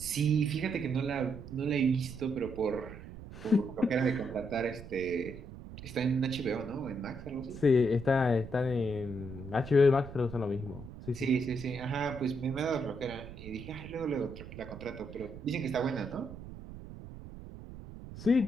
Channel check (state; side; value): noise; right; rumble, 13 dB below the sound